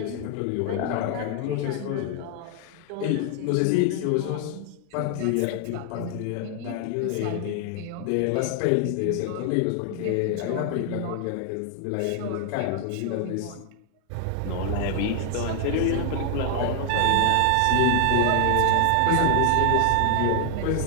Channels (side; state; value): both; different; correlation 0.00